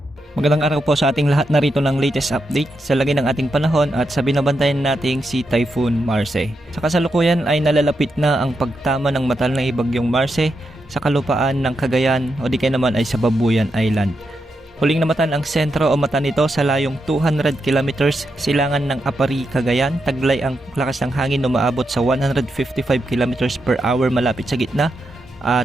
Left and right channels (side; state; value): both; normal; correlation 0.84